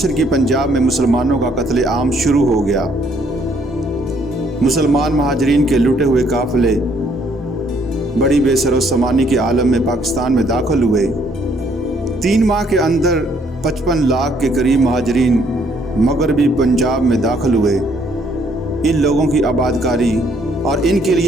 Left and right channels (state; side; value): normal; both; correlation 0.67